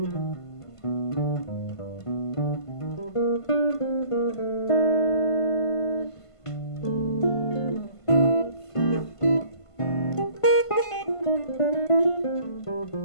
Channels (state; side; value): late; right; 1.5 ms